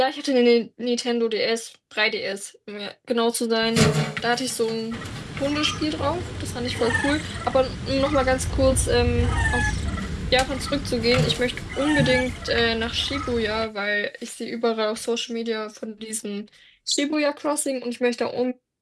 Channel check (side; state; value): both; identical; correlation 1.00